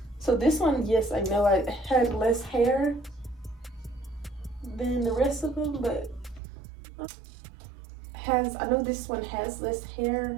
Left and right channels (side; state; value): left; drops out; at 6.4 s